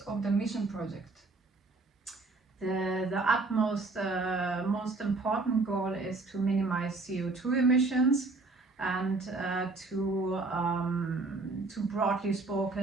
of the mission project? The utmost most important goal is to minimize CO2 emissions and to broadly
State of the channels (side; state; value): left; quieter; 3.5 dB